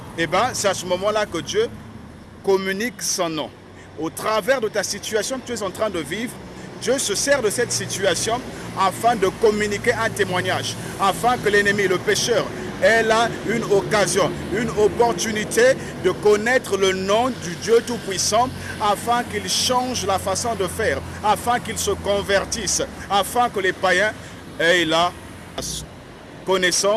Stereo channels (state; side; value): identical; both; correlation 1.00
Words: Eh bien, c'est à ce moment-là que Dieu communique son nom. Au travers de ta situation que tu es en train de vivre, Dieu se sert de cette situation afin de communiquer un témoignage, afin que l'ennemi, le pécheur, ait là une occasion, une opportunité de connaître le nom du Dieu Tout-Puissant, afin qu'il change la façon de faire, afin qu'il se convertisse, afin que les païens aient la